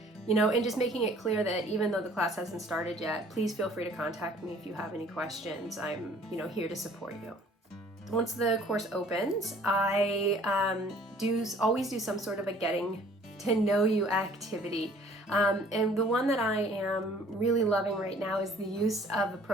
and just making it clear that even though the class hasn't started yet, please feel free to contact me if you have any questions. I'm here to support you. Once the course opens, I always do some sort of a getting to know you activity. And the one that I am really loving right now is the use of a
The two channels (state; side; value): normal; both; correlation 0.54